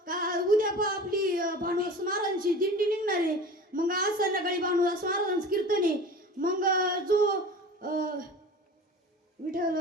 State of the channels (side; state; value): both; normal; correlation 0.37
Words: का उद्या आपली भानुदास महाराजांची दिंडी निघणार आहे. मग आज संध्याकाळी भानुदास महाराजांचं कीर्तन आहे. मग जो विठ्ठल